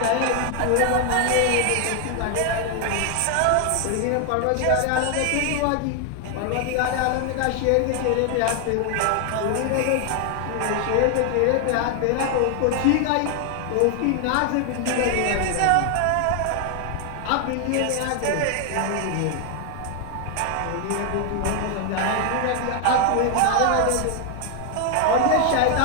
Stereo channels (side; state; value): both; different; correlation 0.00